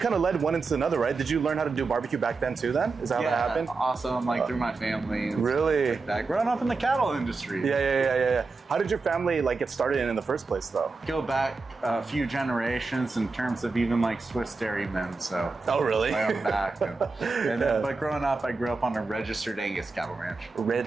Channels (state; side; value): quieter; left; 4.0 dB